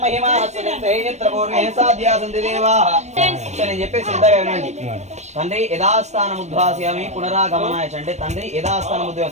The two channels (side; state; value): left; late; 0.33 ms